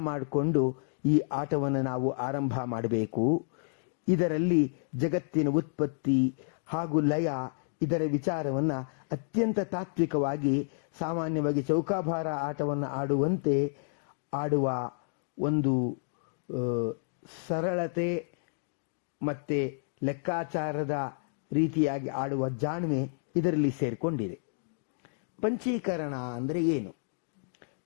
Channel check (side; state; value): right; silent; digital silence